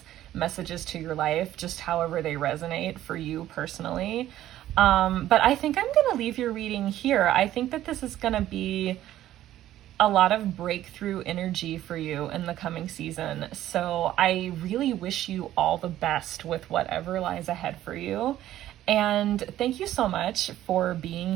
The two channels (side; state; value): left; quieter; 13.2 dB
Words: messages to your life just however they resonate for you personally. But I think I'm going to leave your reading here. I think that this is going to be a lot of breakthrough energy for you in the coming season. So I really wish you all the best with whatever lies ahead for you. And thank you so much for